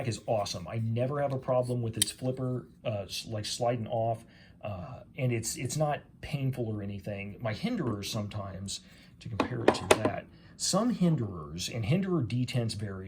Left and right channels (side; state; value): both; identical; correlation 1.00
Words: is awesome. I never have a problem with its flipper like sliding off, and it's not painful or anything. My hinderers sometimes, to compare it to that, some hinderers, and hinderer detents